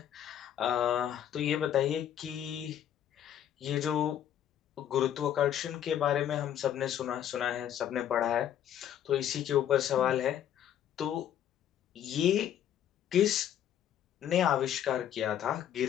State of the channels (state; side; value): quieter; right; 10.2 dB